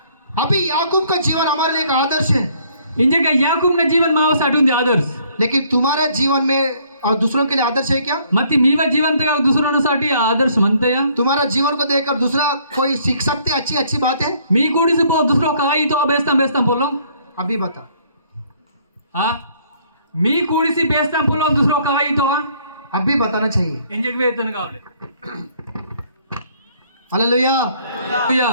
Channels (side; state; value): both; inverted; correlation -0.63